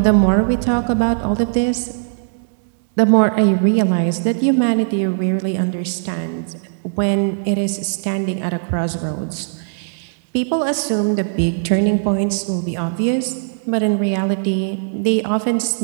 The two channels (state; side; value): silent; left; 67 dB below the other